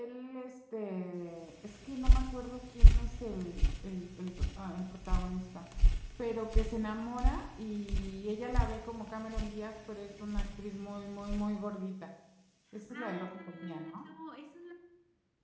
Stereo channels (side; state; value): both; identical; correlation 1.00